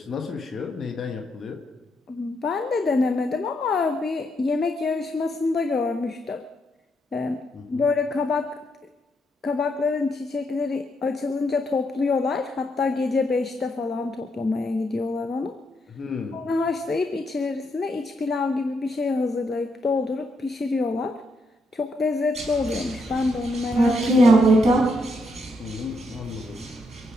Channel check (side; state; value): both; normal; correlation 0.78